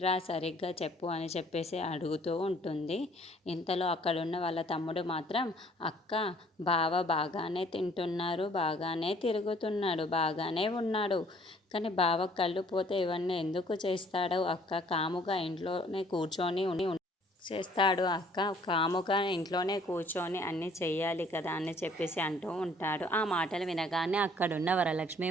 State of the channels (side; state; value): both; normal; correlation 0.59